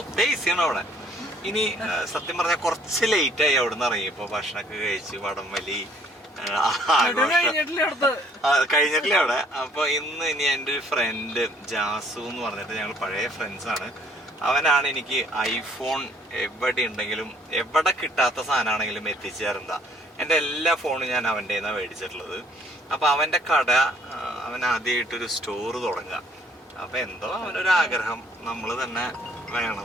AC ആണ് അവിടെ. ഇനി സത്യം പറഞ്ഞാൽ കുറച്ച് ലേറ്റായി അവിടെ നിന്ന് ഇറങ്ങി. ഇപ്പോൾ ഭക്ഷണമൊക്കെ കഴിച്ച് വടംവലി കഴിഞ്ഞിട്ടില്ല അവിടെ. അപ്പൊ ഇനി എൻ്റെ ഒരു ഫ്രണ്ട് ജാസു എന്ന് പറഞ്ഞിട്ട് ഞങ്ങൾ പഴയ ഫ്രണ്ട്സാണ്. അവനാണ് എനിക്ക് ഐഫോൺ എവിടെ ഉണ്ടെങ്കിലും എവിടെ കിട്ടാത്ത സാധനമാണെങ്കിലും എത്തിച്ചു തരുന്ന. എൻ്റെ എല്ലാ ഫോണും ഞാൻ അവൻ്റെ നിന്നാണ് മേടിച്ചിട്ടുള്ളത്. അപ്പൊ അവൻ്റെ കട അവൻ ആദ്യമായിട്ടൊരു സ്റ്റോർ തുടങ്ങുക. അപ്പൊ എന്തോ അവനൊരു ആഗ്രഹം നമ്മൾ തന്നെ വേണം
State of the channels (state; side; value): normal; both; correlation 0.61